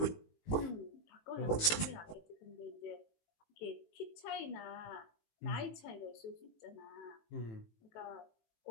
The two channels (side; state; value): right; late; 18 ms